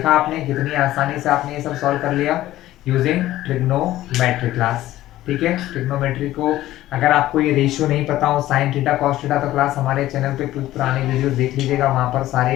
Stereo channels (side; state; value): right; quieter; 14.9 dB